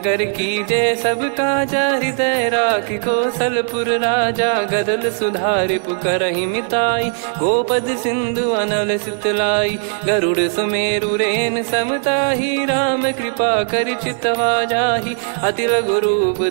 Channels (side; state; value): left; silent; digital silence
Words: की जय सब काजा, हृदय राखि कौशलपुर राजा। गदल सुधारि पुकारहि मिताई, गोपद सिंधु अनल सितलाई। गरुड़ सुमेरु रेन समताहि, राम कृपा करि चितवा जाहि। अति लघु रूप